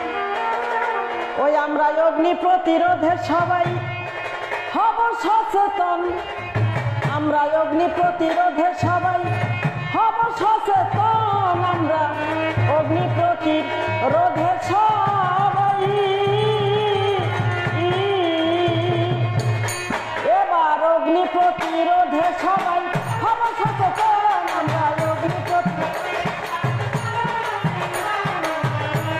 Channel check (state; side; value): identical; both; correlation 1.00